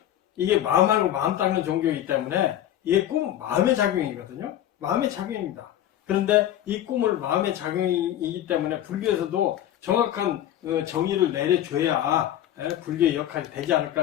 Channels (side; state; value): right; quieter; 11.9 dB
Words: 이게 마음하고 마음 닦는 종교이기 때문에 이게 꿈은 마음의 작용이거든요. 마음의 작용입니다. 그런데 이 꿈을 마음의 작용이기 때문에 불교에서도 정확한 정의를 내려줘야 불교의 역할이 되지